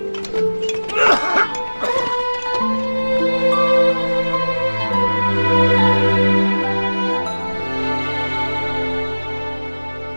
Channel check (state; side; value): inverted; both; correlation -1.00